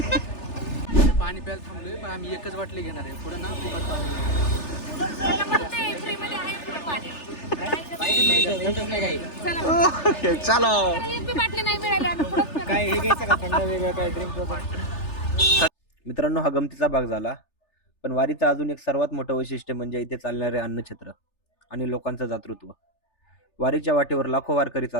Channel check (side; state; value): right; late; 3.4 ms